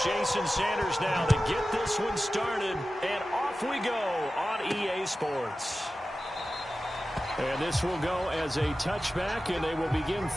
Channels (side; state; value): both; normal; correlation 0.94